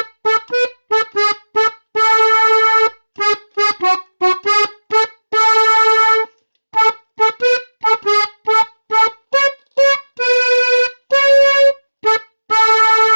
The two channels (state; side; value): inverted; both; correlation -1.00